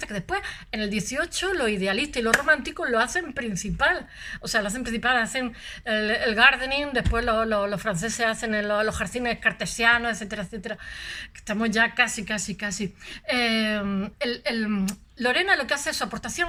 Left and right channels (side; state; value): both; identical; correlation 1.00